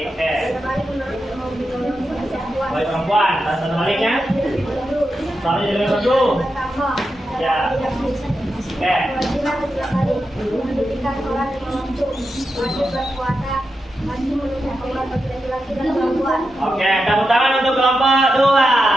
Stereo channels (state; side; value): normal; both; correlation 0.88